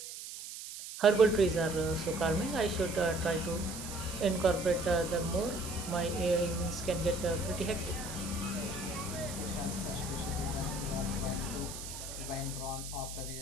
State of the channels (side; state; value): right; noise; hiss, 10 dB below the sound